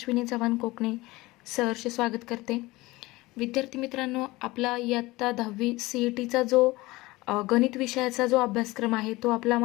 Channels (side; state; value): right; quieter; 20.5 dB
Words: चव्हाण कोकणे सहर्ष स्वागत करते. विद्यार्थी मित्रांनो, आपला इयत्ता 10वी CETचा जो गणित विषयाचा जो अभ्यासक्रम आहे तो आपला